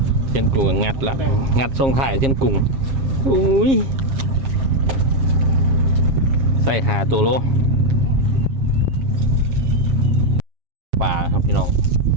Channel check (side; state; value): left; late; 7.5 ms